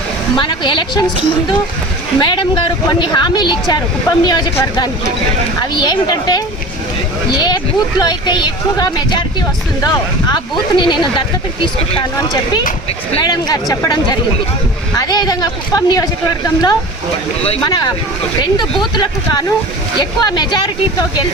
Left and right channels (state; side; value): normal; both; correlation 0.36